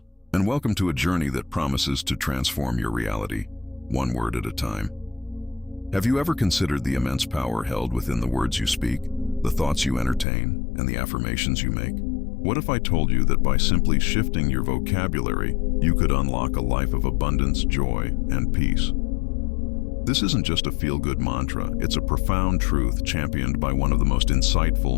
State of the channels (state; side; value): drops out; right; at 10.2 s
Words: and welcome to a journey that promises to transform your reality, one word at a time. Have you ever considered the immense power held within the words you speak, the thoughts you entertain, and the affirmations you make? What if I told you that by simply shifting your vocabulary, you could unlock a life of abundance, joy, and peace? This isn't just a feel-good mantra, it's a profound truth championed by one of the most